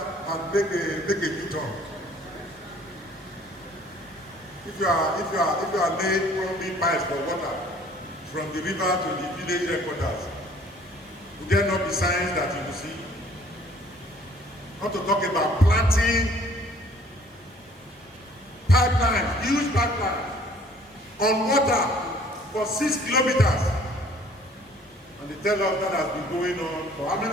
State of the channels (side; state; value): both; normal; correlation 0.56